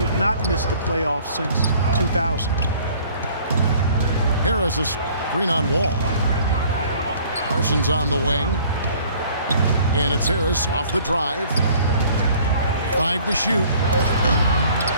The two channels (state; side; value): inverted; both; correlation -0.54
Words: not missed the playoffs since 2000. Harris a screen on Wall. Parsons on the wing. And it's Harris off the drive. 5 to shoot.